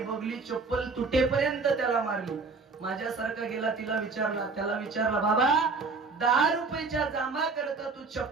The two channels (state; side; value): quieter; left; 4.2 dB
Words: बघली चप्पल तुटेपर्यंत त्याला मारली माझ्यासारखा गेला त्याला विचारला बाबा 10 रुपयाच्या जांभा करता तू